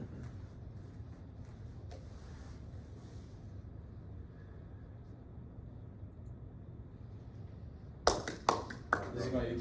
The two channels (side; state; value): both; identical; correlation 1.00